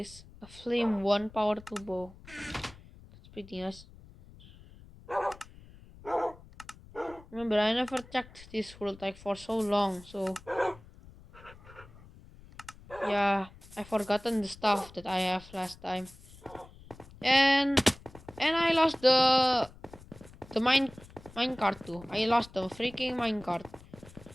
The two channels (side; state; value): left; noise; rumble, 21 dB below the sound